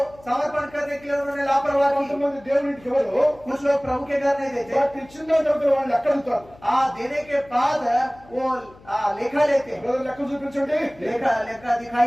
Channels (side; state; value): left; noise; hum, 24 dB below the sound